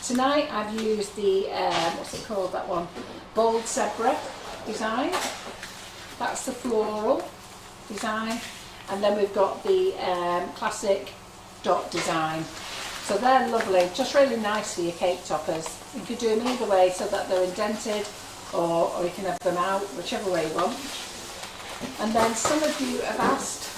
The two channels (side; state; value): both; identical; correlation 1.00